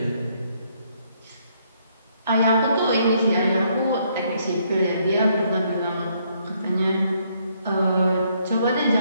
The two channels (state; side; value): inverted; both; correlation -0.70